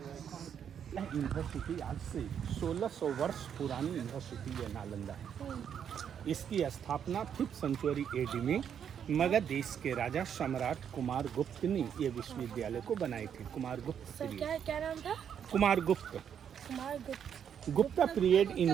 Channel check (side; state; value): left; quieter; 8.4 dB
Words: यूनिवर्सिटी आज से 1600 वर्ष पुरानी यूनिवर्सिटी है नालंदा है। इसकी स्थापना 5th सेंचुरी एडी में मगध देश के राजा सम्राट कुमार गुप्त ने ये विश्वविद्यालय को बनाए थे। कुमार गुप्त क्या नाम था? कुमार गुप्त। गुप्ता पीरियड